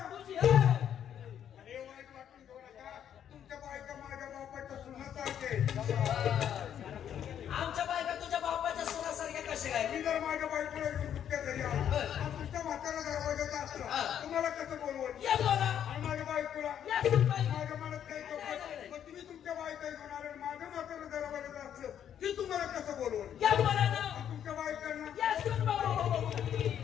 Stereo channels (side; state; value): right; quieter; 9.5 dB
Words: तुझी. अरे वाईट वाटून घेऊ नका तुमच्या बायका माझ्या बापाच्या सुनासारखे आमच्या बायका तुझ्या बापाच्या सुनासारख्या कशा काय? मी जर माझ्या बायकोला घेऊन तुमच्या घरी आलो आणि तुमच्या म्हातारा दरवाजाचा असतं तुम्हाला कसं बोलवलं या बोला. आणि माझ्या बायकोला या सुनबाई. माझ्या मनात काही नाही. मग तुम्ही तुमच्या बायका घेऊन आले आणि माझ्या म्हातारा दरवाजाचं असलं की तुम्हाला कसं बोलवलं या बोला ना. आणि तुमच्या बायकांना या सुनबाई.